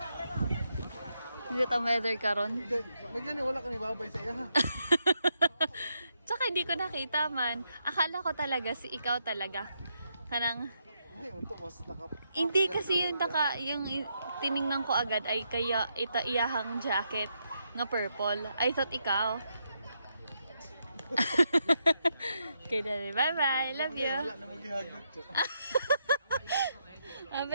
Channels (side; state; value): both; inverted; correlation -0.80